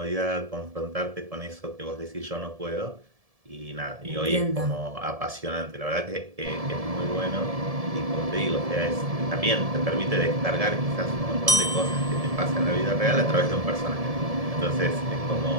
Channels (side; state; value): left; late; 1.7 ms